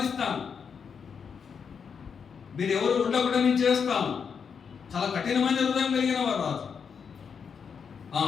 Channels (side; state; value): right; quieter; 6.5 dB